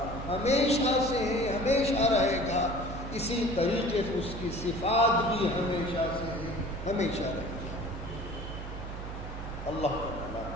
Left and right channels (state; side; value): noise; right; hum, 8 dB below the sound